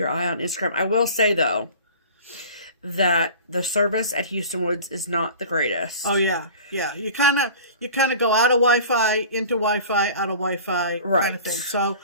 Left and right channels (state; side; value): inverted; both; correlation -0.41